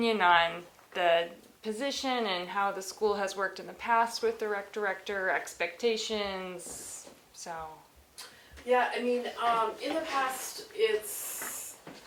on the position and how the school has worked in the past with the rec director, expectations, so. Yeah, I mean, in the past,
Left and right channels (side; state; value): both; identical; correlation 1.00